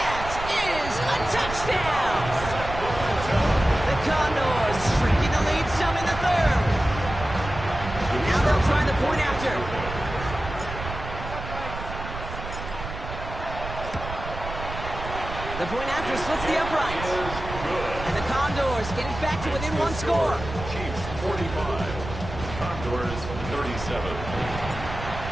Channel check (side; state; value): right; noise; rumble, 9 dB below the sound